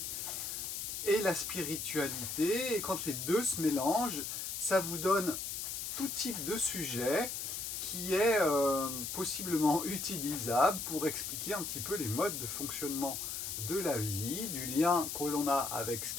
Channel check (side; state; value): left; noise; hiss, 4 dB below the sound